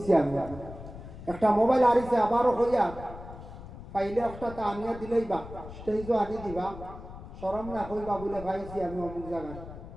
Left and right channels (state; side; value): noise; left; rumble, 13 dB below the sound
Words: আমি একটা মোবাইল আনিছে, আবারও হইয়া পাইলে একটা তা আনিয়া দিলেই বা স্টেজও আনি দিবা, শরম না কইবা বলে পাইছি আমি অমুক জায়গায়।